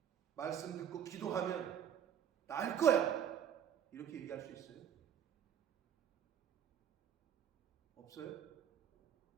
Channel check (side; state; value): left; quieter; 9.0 dB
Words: 말씀 듣고 기도하면 나을 거야. 이렇게 얘기할 수 있어요? 없어요?